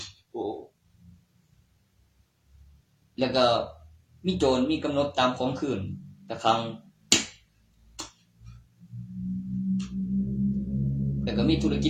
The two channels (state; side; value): identical; both; correlation 1.00